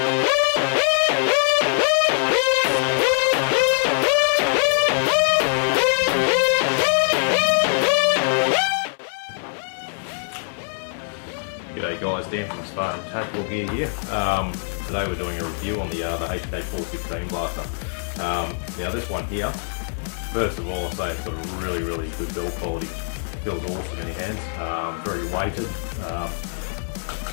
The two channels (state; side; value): silent; right; 63 dB below the other